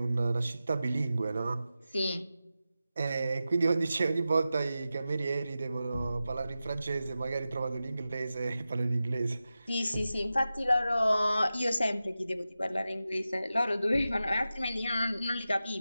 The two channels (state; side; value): inverted; both; correlation -0.93